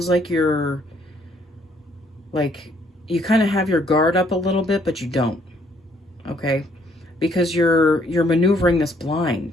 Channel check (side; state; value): both; normal; correlation 0.66